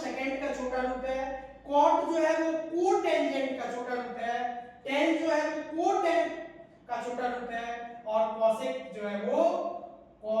का छोटा रूप है, कॉट जो है वो कोटेंजेंट का छोटा रूप है, टेन जो है वो कोटेन का छोटा रूप है, और कोसेक जो है वो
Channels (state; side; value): identical; both; correlation 1.00